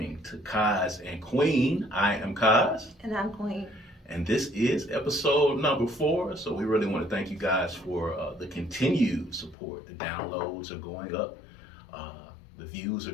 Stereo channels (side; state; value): right; drops out; at 9.6 s